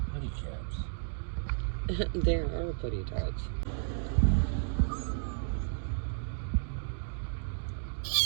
putty caps. There are putty tots.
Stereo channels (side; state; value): left; silent; digital silence